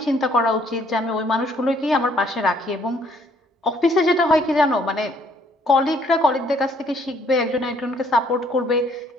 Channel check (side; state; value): both; normal; correlation 0.64